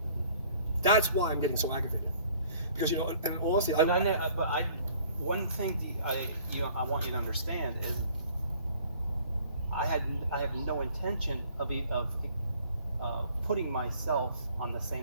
That's why I'm getting so aggravated. Because, and honestly, one thing I want you to understand is I have no intention of putting myself on the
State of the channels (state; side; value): inverted; both; correlation -0.55